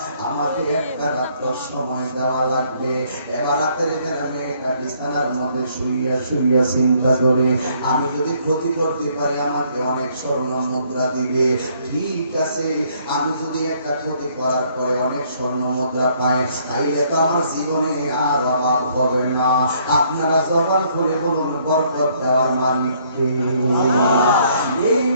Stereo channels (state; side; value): inverted; both; correlation -0.66